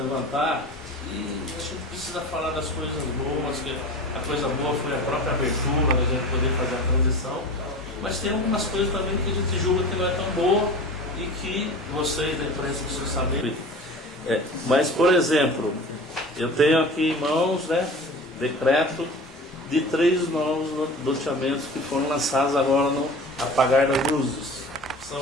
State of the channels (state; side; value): normal; both; correlation 0.37